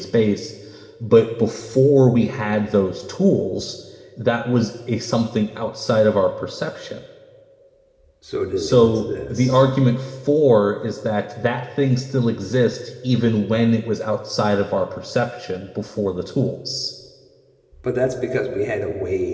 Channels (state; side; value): identical; both; correlation 1.00